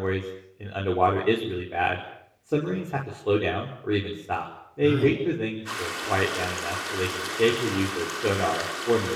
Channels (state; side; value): identical; both; correlation 1.00